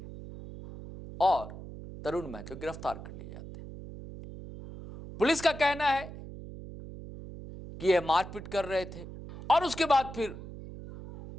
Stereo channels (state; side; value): noise; right; hum, 12 dB below the sound